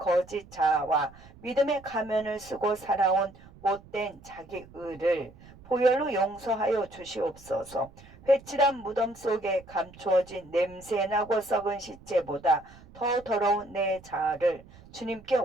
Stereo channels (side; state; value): right; noise; rumble, 22 dB below the sound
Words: 자아와 믿음의 가면을 쓰고 살아온 못된 자기 의를 보혈로 용서하여 주시옵소서. 회칠한 무덤 속에 감추어진 냄새나고 썩은 시체보다 더 더러운 내 자아를 주님께